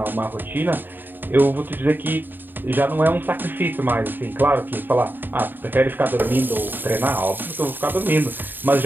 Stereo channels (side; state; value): left; late; 0.092 ms